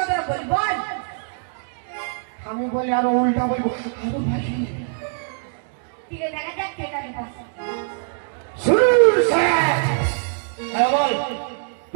বল, বল। আমি বলি আরো উল্টা বলবো, আরো ভাষী। ঠিক আছে, দেখা যাক কে কাকে পাচ্ছে। শুরু স্যার। হ্যাঁ বল।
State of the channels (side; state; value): left; silent; digital silence